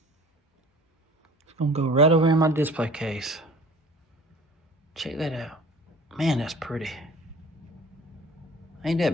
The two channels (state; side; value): normal; both; correlation 0.45